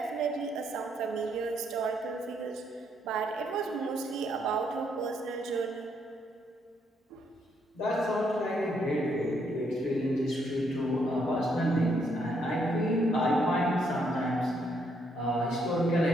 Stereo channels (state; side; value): normal; both; correlation 0.73